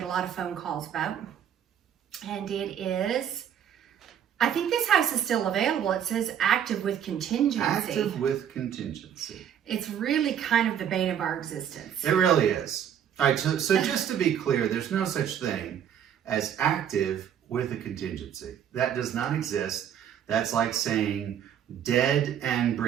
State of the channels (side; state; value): left; quieter; 9.2 dB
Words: a lot of phone calls about. And it is, I think this house is still available. It says active with contingency. Active with contingency. It's really kind of the bane of our existence. It really is. All right, so just to be clear, there's no such thing as active with a contingency. That does not exist. That's like saying dead and